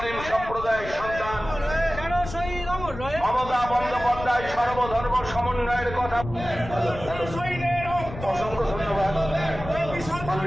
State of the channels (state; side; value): noise; left; rumble, 11 dB below the sound